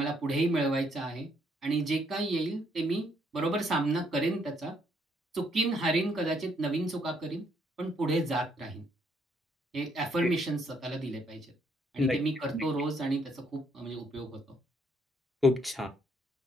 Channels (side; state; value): both; normal; correlation 0.70